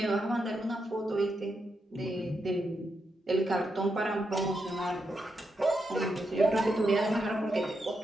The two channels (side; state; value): both; normal; correlation 0.84